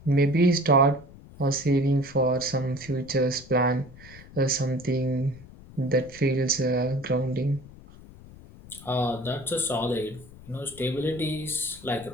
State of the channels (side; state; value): left; noise; rumble, 19 dB below the sound